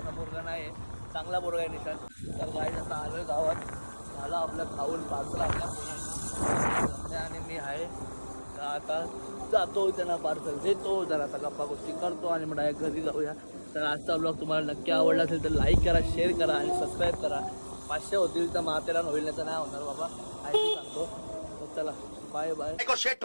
पोरगा नाही, चांगला पोरगा आहे निशांत. तर गाडी आता आलोय गावात. झालं आपलं खाऊन पार्सल आपल्या पोरांना, आणि मी आहे तर आता जातो त्यांना पार्सल देतो, जरासा गप्पा गोष्टी करतो आणि मग डायरेक्ट घरी जाऊया. तर आजचा ब्लॉग तुम्हाला नक्की आवडला असेल तर लाईक करा, शेअर करा आणि सबस्क्राईब करा. 500 होतील तर मातेला होईल, नाही तर नाही होणार बाबा, काय सांगतो. तर चला, बाय बाय.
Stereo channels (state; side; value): inverted; both; correlation -1.00